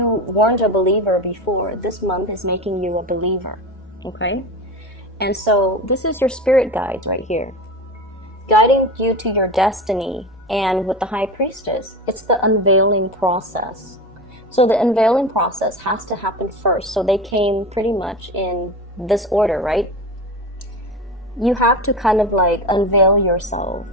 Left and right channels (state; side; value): normal; both; correlation 0.26